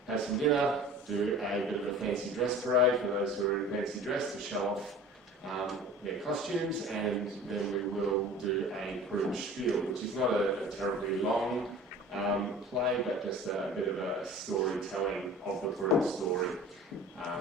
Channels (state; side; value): normal; both; correlation 0.41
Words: Have some dinner, do a bit of a fancy dress parade for those who are in fancy dress to show off their costumes, and then we will do a Purim spiel, which is not a terribly long play, but just a bit of a storytelling of the Purim story,